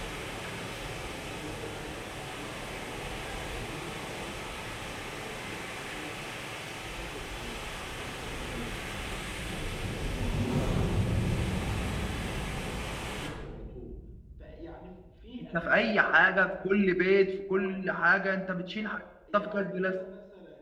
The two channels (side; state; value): both; identical; correlation 1.00